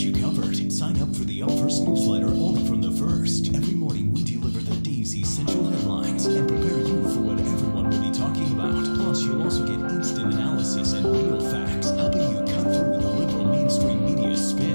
covered. Sign up for the Up First newsletter only from The First. Every morning we deliver the day's essential headlines and prepare you for what everyone will be talking about. Plus, you'll also get instant analysis and real facts, helping you cut through the liberal mainstream media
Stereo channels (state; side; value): inverted; both; correlation -1.00